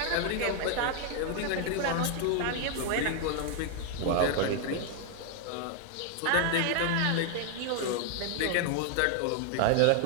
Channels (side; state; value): both; different; correlation 0.00